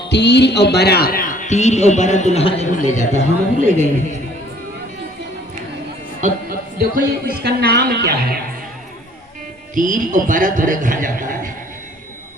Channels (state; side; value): normal; both; correlation 0.56